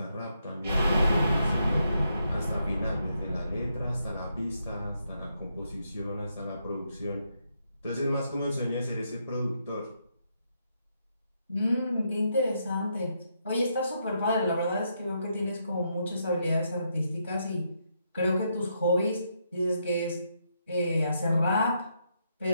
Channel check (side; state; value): both; inverted; correlation -0.79